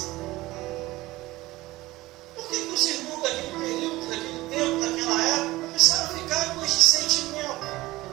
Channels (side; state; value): left; quieter; 18.7 dB